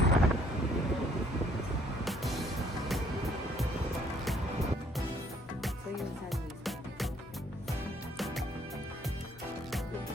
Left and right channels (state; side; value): normal; both; correlation 0.63